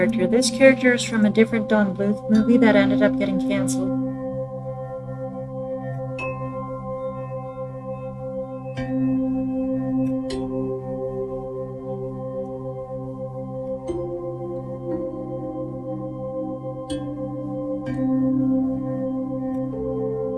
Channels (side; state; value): both; identical; correlation 1.00